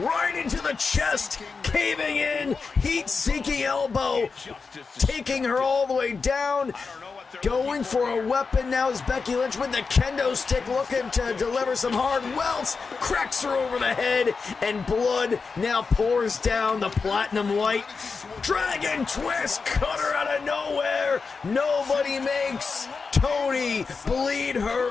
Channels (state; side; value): quieter; right; 4.8 dB